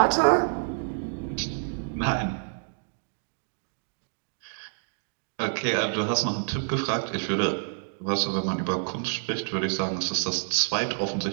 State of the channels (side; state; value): left; silent; digital silence